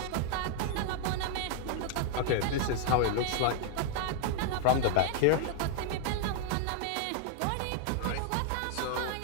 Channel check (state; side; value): different; both; correlation 0.00